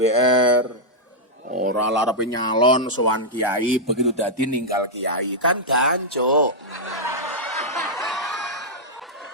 Ora larepe nyalon sowan kiai, begitu dadi ninggal kiai. Kan gancuk.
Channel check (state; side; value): normal; both; correlation -0.06